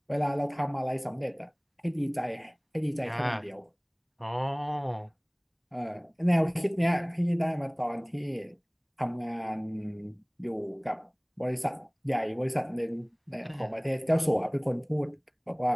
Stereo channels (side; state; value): both; identical; correlation 1.00